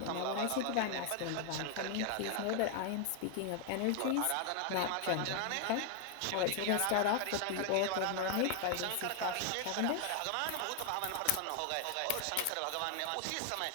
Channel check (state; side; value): different; both; correlation 0.00